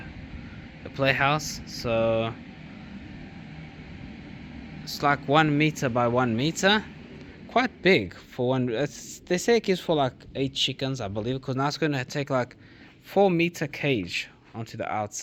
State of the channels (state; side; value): identical; both; correlation 1.00